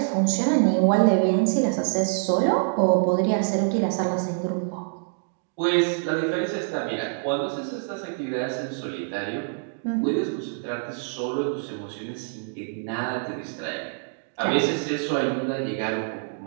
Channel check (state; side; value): silent; left; digital silence